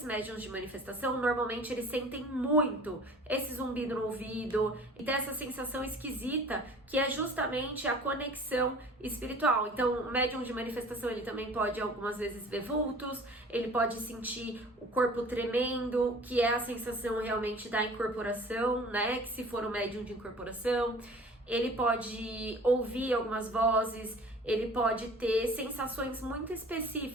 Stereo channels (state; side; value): normal; both; correlation 0.46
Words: médiums de manifestação, normalmente eles sentem muito esse zumbido no ouvido e tem essa sensação esquisita que é justamente a conexão espiritual. Então, o médium de manifestação, ele também pode algumas vezes ver vultos, ele pode sentir o corpo tremendo, que é a sensação realmente da incorporação, né, que se for um médium de incorporação, ele pode ouvir algumas vozes, ele pode ter sensações muito